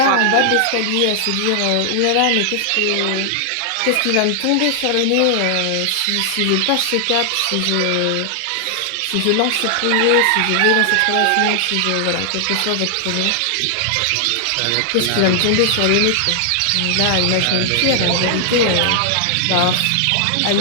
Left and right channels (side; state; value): both; different; correlation 0.00